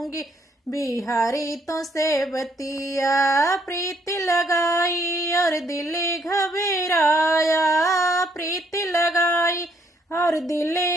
बिहारी तो से बतिया। प्रीत लगाई और दिल घबराया, प्रीत लगाई और दिल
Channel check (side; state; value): both; normal; correlation 0.70